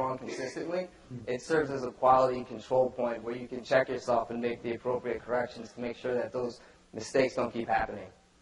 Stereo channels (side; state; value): both; identical; correlation 1.00